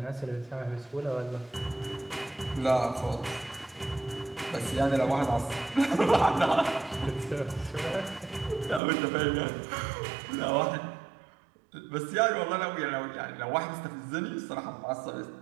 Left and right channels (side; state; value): left; drops out; at 8.8 s